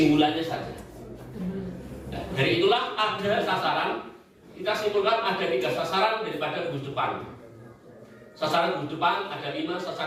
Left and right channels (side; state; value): both; identical; correlation 1.00